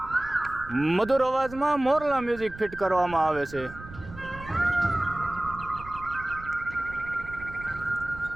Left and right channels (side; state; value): right; noise; rumble, 16 dB below the sound